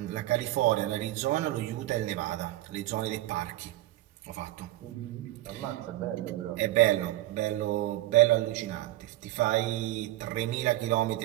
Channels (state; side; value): quieter; left; 16.2 dB